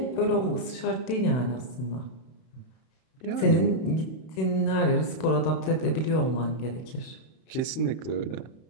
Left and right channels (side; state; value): right; late; 32 ms